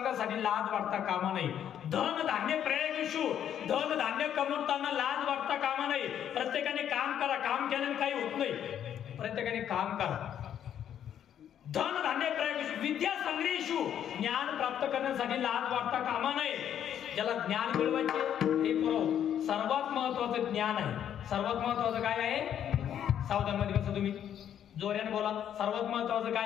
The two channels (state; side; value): quieter; right; 9.8 dB